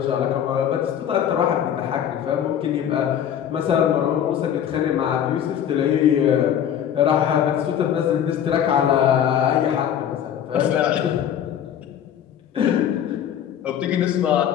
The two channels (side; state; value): right; quieter; 9.6 dB